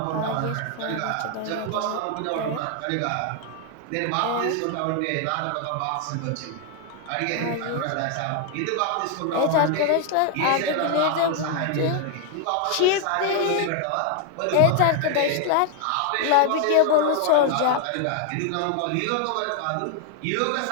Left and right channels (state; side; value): different; both; correlation 0.00